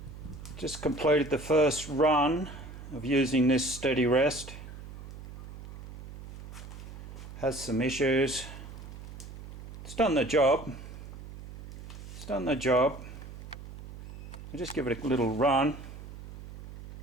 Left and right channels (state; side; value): noise; right; hum, 13 dB below the sound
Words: just completed the first run of using this steady rest. Has some issues. It's done the job. It's done the job. I'll just give it a little run.